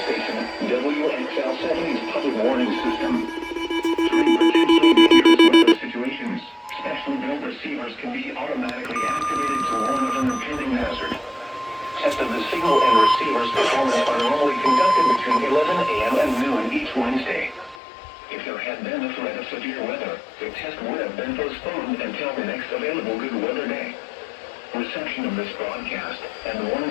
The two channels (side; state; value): right; drops out; at 17.8 s